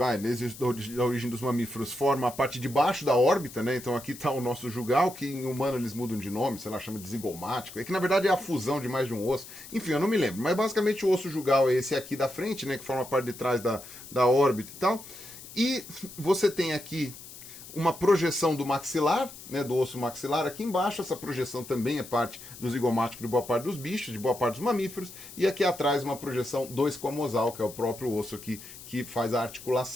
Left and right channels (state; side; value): noise; left; hiss, 15 dB below the sound